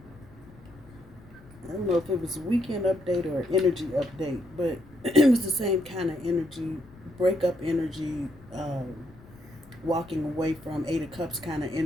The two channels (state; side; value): noise; left; rumble, 23 dB below the sound